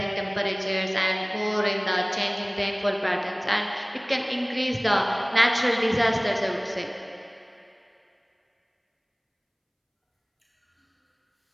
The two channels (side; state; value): both; identical; correlation 1.00